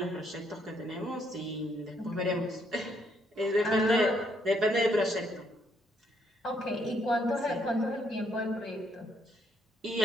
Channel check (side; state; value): both; normal; correlation 0.72